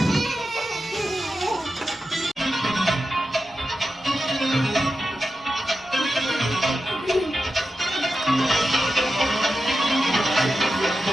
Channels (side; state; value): both; normal; correlation 0.90